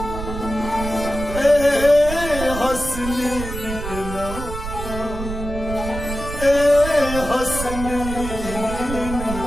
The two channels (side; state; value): right; noise; rumble, 7 dB below the sound